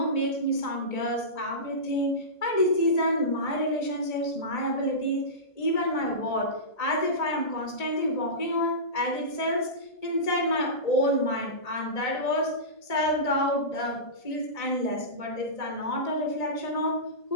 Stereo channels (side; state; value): right; late; 1.8 ms